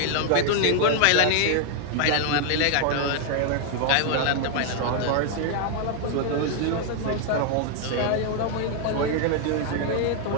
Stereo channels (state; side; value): different; both; correlation 0.00